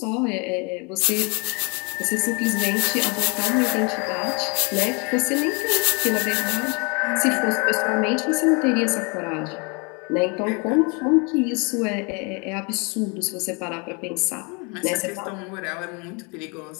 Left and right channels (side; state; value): right; quieter; 32.1 dB